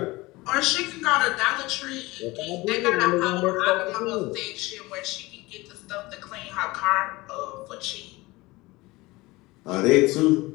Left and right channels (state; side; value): quieter; right; 21.3 dB